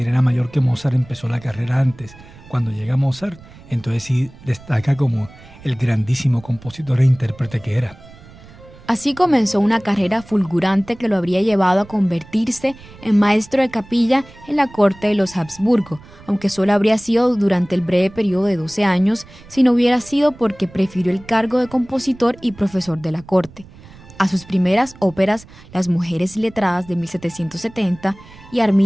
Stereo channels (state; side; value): noise; right; rumble, 21 dB below the sound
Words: era mayor que Mozart, empezó la carrera antes. Cuando llega Mozart, entonces sí destaca como el grandísimo compositor e intérprete que era. Así comenzó una carrera fulgurante que lo habría llevado a convertirse en maestro de capilla en la corte de los Habsburgo, aunque solo habría sido durante el breve periodo de 12 años, si no hubiera sido porque prefirió el cargo de compositor y profesor de la corte. A sus primeras óperas, Las mujeres letradas de 1770 y